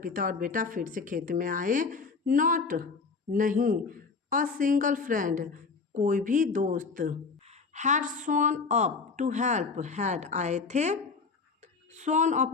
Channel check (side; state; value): right; quieter; 4.7 dB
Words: पिता और बेटा फिर से खेत में आए। नॉट, नहीं। अ सिंगल फ्रेंड, कोई भी दोस्त। Had shown up to help, had आए थे। शोन